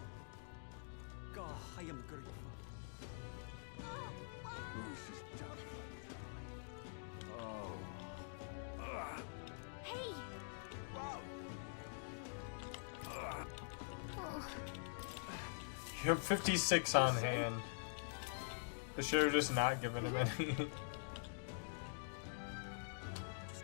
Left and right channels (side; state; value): right; silent; digital silence